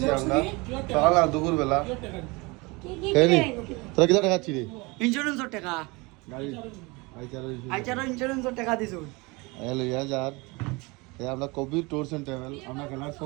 আমরা সকাল আর দুপুর বেলা তোরা কিটা টাকা ছিলি ইন্স্যুরেন্সের টাকা গাড়ি আইচারও ইন্স্যুরেন্সের টাকা দিছো হ্যালো ইয়ার আমরা কবির ট্যুরস এন্ড ট্রাভেল আমরা খেলার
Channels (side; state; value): left; quieter; 25.8 dB